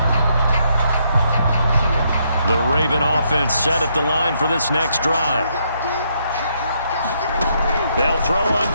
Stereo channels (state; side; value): inverted; both; correlation -0.75